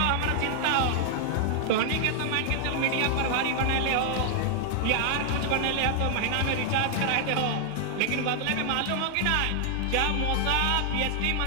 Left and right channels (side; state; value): both; different; correlation 0.00